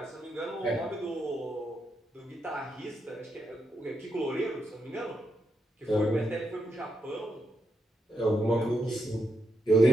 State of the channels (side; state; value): both; normal; correlation 0.82